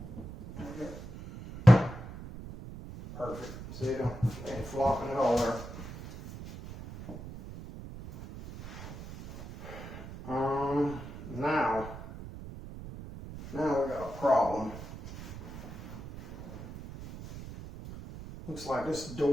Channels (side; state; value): right; noise; rumble, 12 dB below the sound